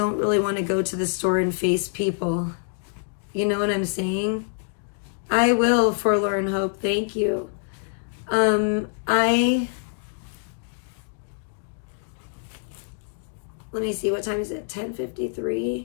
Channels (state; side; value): silent; right; digital silence